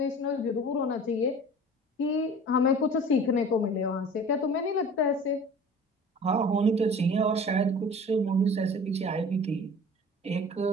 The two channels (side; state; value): both; normal; correlation 0.43